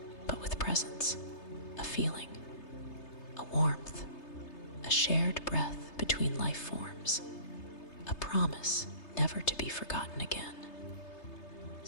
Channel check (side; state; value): right; late; 3.3 ms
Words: but with presence, a feeling, a warmth, a shared breath between life forms, a promise never to be forgotten again.